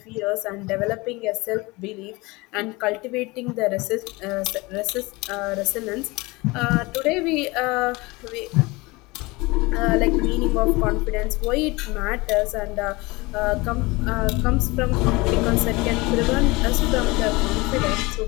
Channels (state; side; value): quieter; right; 23.5 dB